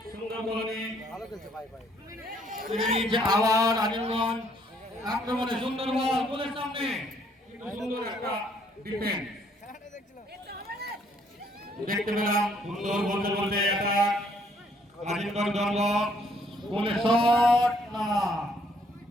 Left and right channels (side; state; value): both; normal; correlation 0.66